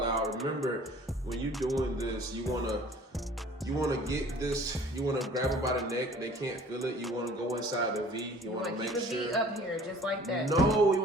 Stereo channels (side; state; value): both; normal; correlation 0.50